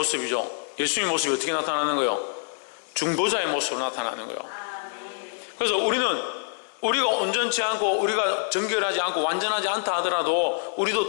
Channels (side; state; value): right; silent; digital silence